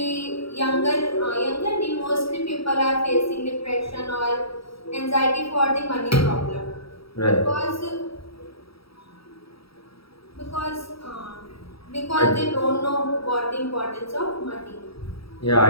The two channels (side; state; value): right; late; 0.76 ms